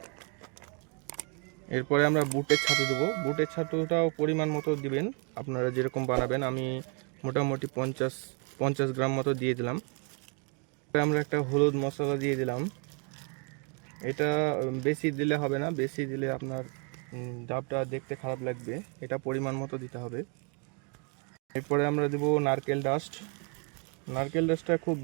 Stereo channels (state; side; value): quieter; left; 36.6 dB